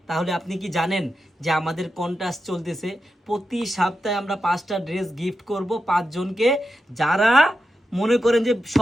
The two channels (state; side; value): normal; both; correlation 0.89